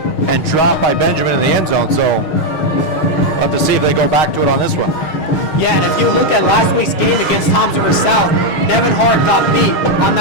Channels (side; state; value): right; late; 6.4 ms